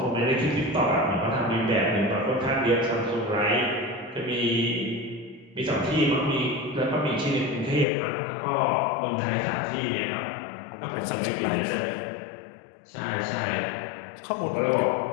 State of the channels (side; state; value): right; drops out; at 7.9 s